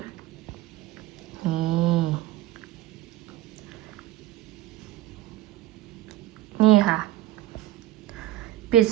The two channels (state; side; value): quieter; left; 14.6 dB